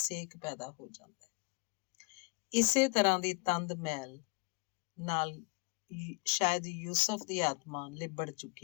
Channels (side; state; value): right; quieter; 31.3 dB